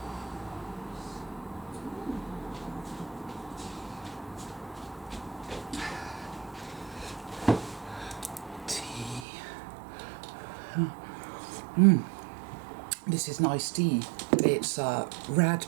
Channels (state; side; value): drops out; left; at 9.2 s